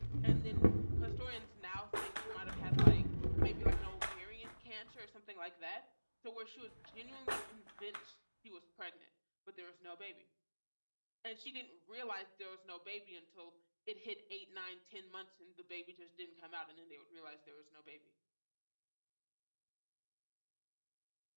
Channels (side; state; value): both; inverted; correlation -1.00